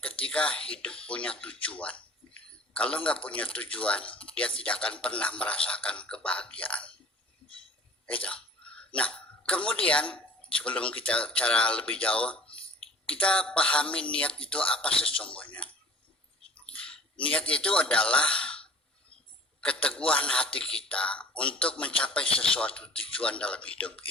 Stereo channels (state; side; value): normal; both; correlation 0.47